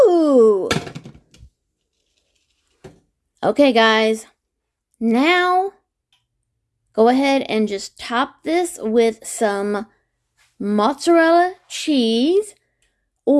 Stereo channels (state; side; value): identical; both; correlation 1.00